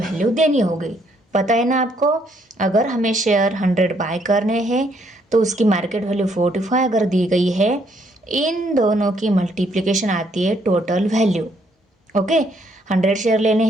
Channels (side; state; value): both; normal; correlation 0.70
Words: देनी होगी। पता है ना आपको, अगर हमें शेयर 100 बाय करने हैं तो उसकी मार्केट वैल्यू 45 अगर दी गई है, इन दोनों की मल्टीप्लिकेशन आती है टोटल वैल्यू। ओके 100 शेयर लेने